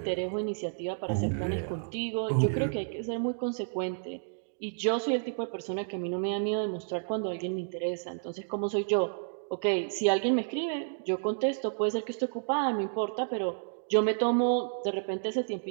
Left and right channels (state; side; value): silent; left; digital silence